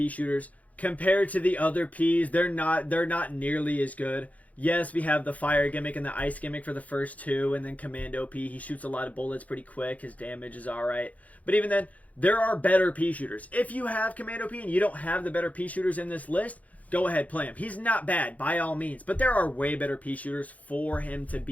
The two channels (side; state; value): right; late; 0.071 ms